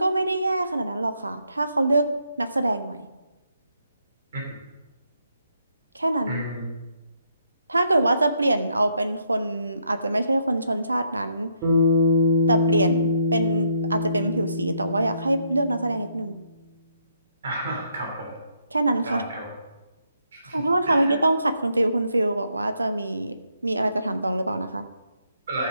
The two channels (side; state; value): both; inverted; correlation -0.75